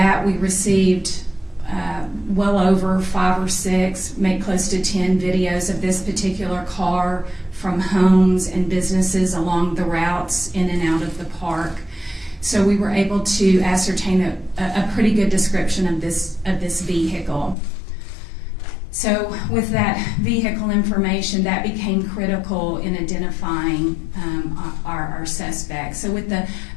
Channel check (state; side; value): drops out; right; at 17.6 s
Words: we received well over 5 or 6, maybe close to 10 videos of this particular car from homes and businesses along the routes in and out of the park. So we were able to ascertain a pretty good description of this vehicle. So with that vehicle information, that became critical in identifying our suspect. So with